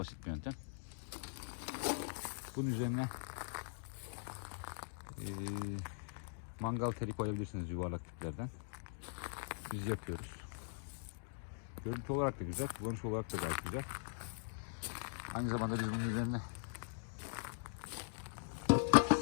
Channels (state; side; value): silent; right; digital silence